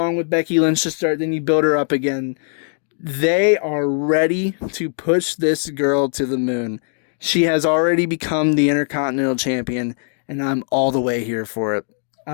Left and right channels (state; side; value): silent; right; 57 dB below the other